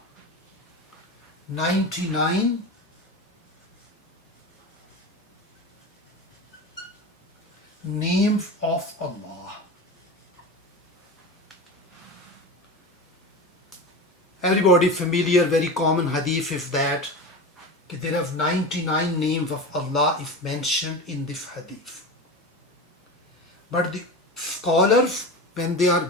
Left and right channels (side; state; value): both; normal; correlation 0.27